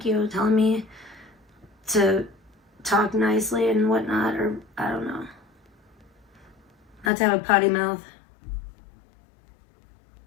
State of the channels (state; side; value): drops out; right; at 7.1 s